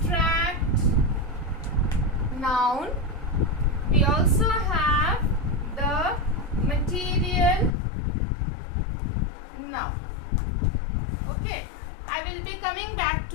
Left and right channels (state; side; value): drops out; right; at 7.7 s